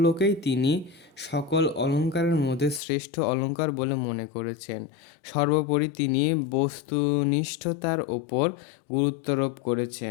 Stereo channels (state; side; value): drops out; right; at 2.8 s